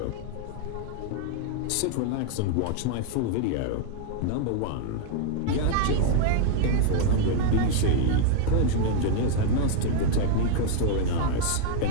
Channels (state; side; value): different; both; correlation 0.00